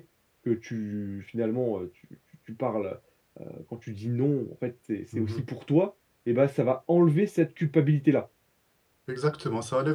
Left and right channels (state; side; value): identical; both; correlation 1.00